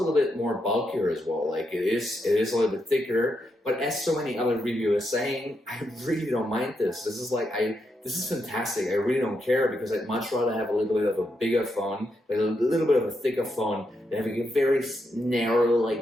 bit more bulkier as well. Like it is a little bit thicker, but as so many other reviewers saying, I really don't mind this. This is fantastic. I really don't care because I'd much rather have a little bit of a bigger phone, like a little bit of a thicker phone, than having a very narrow,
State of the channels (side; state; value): both; normal; correlation 0.82